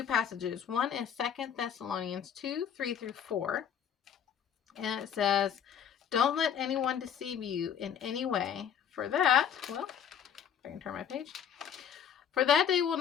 passages. One is 2 Thessalonians 2, 3 through 4. And it says, "Don't let anyone deceive you in any way. For that," well, if I can turn my page. "For that day will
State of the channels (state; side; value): quieter; right; 8.5 dB